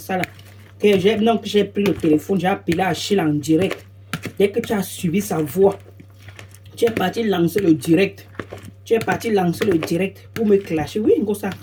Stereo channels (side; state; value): both; identical; correlation 1.00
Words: là, que j'ai pris le téléphone, j'ai appelé Achille en direct. Dès que tu as suivi sa voix, tu es parti lancer le direct. Tu es parti lancer le direct pour me clasher. Oui,